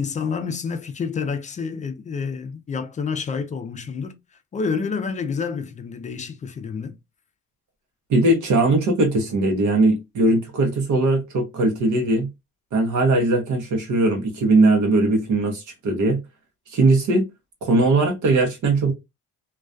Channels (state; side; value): normal; both; correlation 0.48